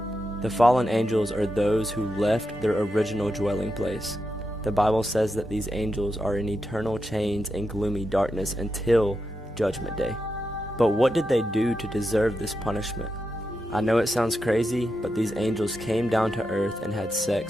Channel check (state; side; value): normal; both; correlation 0.87